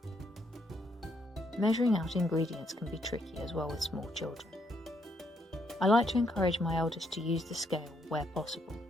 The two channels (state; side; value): normal; both; correlation 0.74